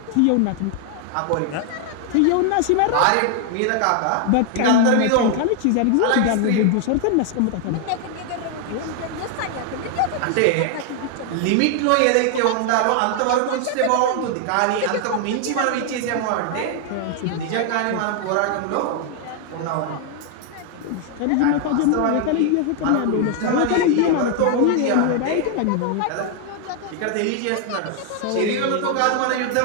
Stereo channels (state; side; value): different; both; correlation 0.00